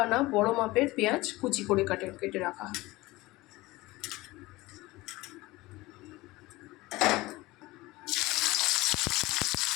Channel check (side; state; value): right; quieter; 20.1 dB